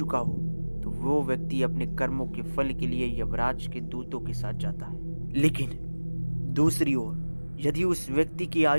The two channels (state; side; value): inverted; both; correlation -1.00